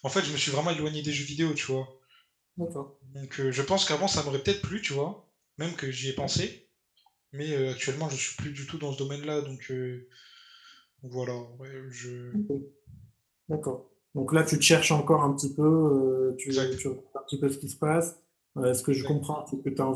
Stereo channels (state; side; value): identical; both; correlation 1.00